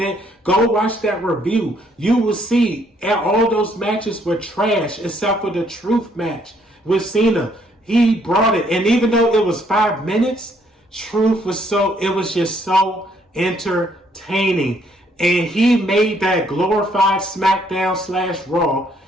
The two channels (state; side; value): normal; both; correlation 0.68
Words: Go watch that review. You will see all those matches were trash except for the Truth match with Cena. He brought it. And even though it was 5 minutes, Truth was just so entertaining. And he made that glorified SmackDown/Raw